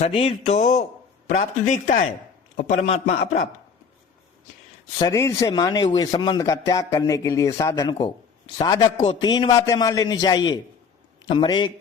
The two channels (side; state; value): right; quieter; 5.9 dB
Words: तो प्राप्त दिखता है और परमात्मा अप्राप्त। शरीर से माने हुए संबंध का त्याग करने के लिए साधक को 3 बातें मान लेनी चाहिए। नंबर 1,